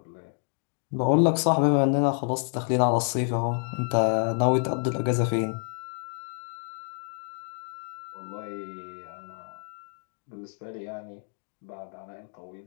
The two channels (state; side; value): silent; right; 59 dB below the other